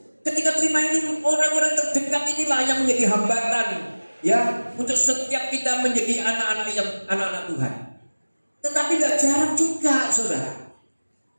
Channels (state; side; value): inverted; both; correlation -1.00